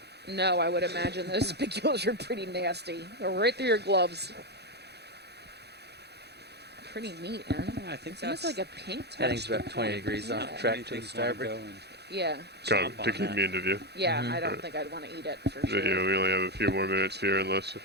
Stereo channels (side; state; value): left; late; 0.48 ms